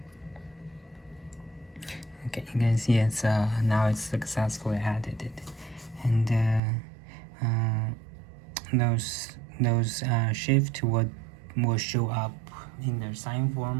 Okay, you can see it's now it's successfully added, and those shift will show up in the sign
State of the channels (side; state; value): left; drops out; at 6.6 s